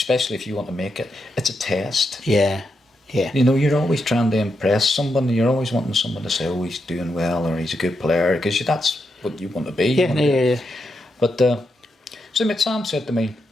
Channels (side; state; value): both; normal; correlation 0.84